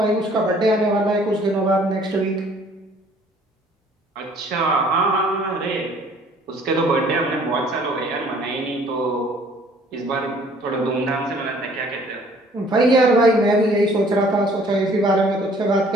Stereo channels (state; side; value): normal; both; correlation 0.57